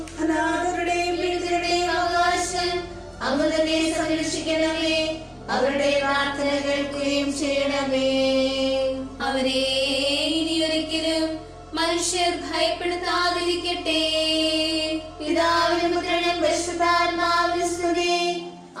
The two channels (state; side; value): identical; both; correlation 1.00